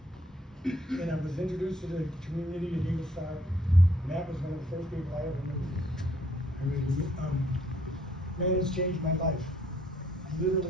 And I was introduced to the community at Eagle Star, and that was one of the first people I ever knew. Man, it's changed my life.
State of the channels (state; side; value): normal; both; correlation 0.66